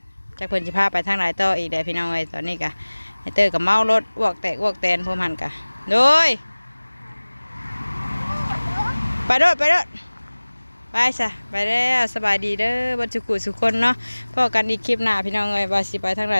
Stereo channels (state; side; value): inverted; both; correlation -1.00